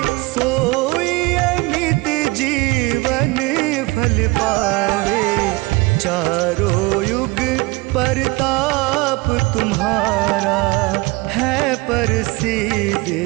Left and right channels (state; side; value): quieter; left; 23.4 dB